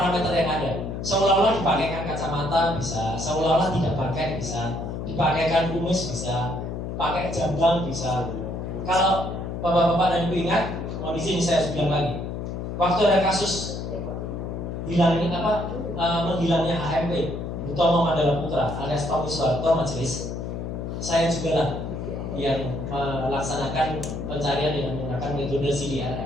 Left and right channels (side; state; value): left; noise; hum, 5 dB below the sound